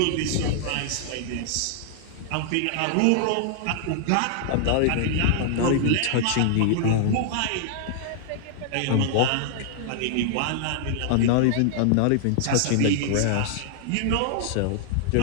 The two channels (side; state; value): both; different; correlation -0.01